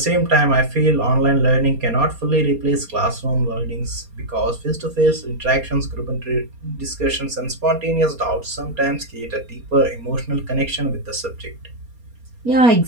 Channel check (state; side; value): late; left; 4.3 ms